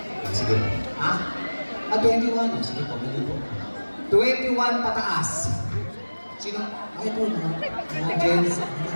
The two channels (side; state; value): both; inverted; correlation -1.00